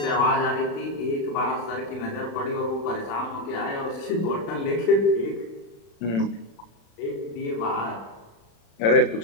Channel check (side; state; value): right; late; 35 ms